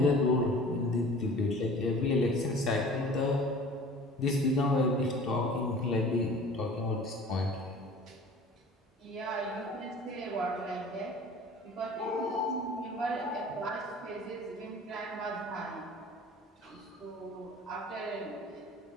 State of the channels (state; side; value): normal; both; correlation 0.44